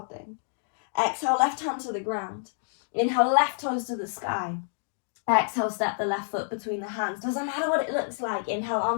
thing. Exhale, left hand to the ground. Inhale, left toes to the sky. Exhale, step the left foot between the hands. Doesn't matter what it looks like. Inhale,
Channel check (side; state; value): right; silent; digital silence